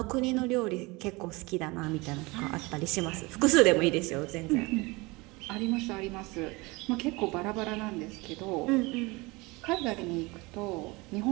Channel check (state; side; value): quieter; left; 24.3 dB